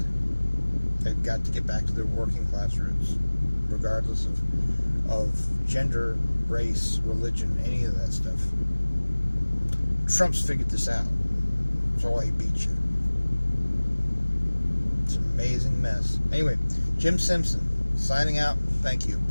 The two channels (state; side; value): inverted; both; correlation -1.00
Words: They've got to get back to their working class roots, regardless of gender, race, religion, any of that stuff. Trump's figured this out. That's why he beat you. It's an amazing mess. Anyway, Jim Simpson Signing out. Thank you.